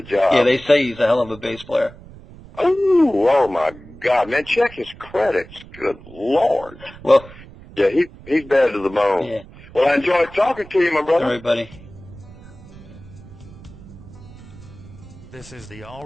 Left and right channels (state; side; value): noise; right; rumble, 19 dB below the sound